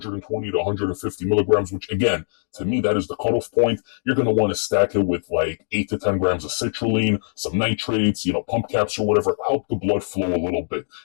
to 150 milligrams, which again, to me, that is the cutoff point, you're going to want to stack it with like 8 to 10 grams of citrulline, some nitrates, pump caps or whatever, help the blood flow a little bit.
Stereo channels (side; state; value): right; silent; digital silence